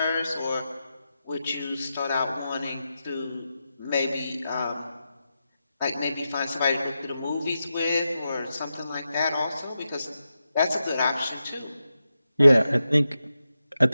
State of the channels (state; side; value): inverted; both; correlation -0.89